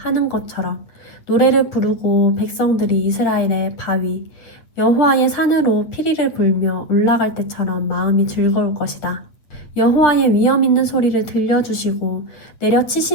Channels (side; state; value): right; late; 8.5 ms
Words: 것처럼 노래를 부르고 백성들이 이스라엘의 바위 여호와의 산으로 피리를 불며 올라갈 때처럼 마음이 즐거울 것이다. 여호와의 위엄 있는 소리를 들려주시고